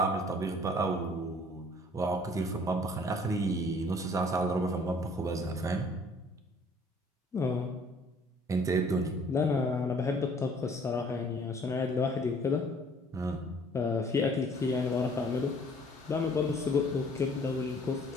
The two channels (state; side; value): normal; both; correlation 0.56